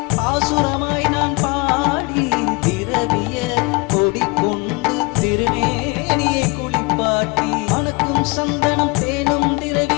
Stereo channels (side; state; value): right; quieter; 27.8 dB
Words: பாசுரமாய் நான் பாடி திரவிய கொடி கொண்டு திருமேனியை குளிப்பாட்டி மணக்கும் சந்தனம் தேனும்